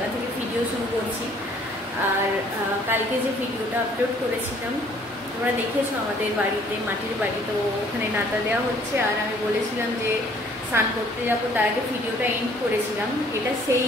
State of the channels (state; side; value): normal; both; correlation 0.59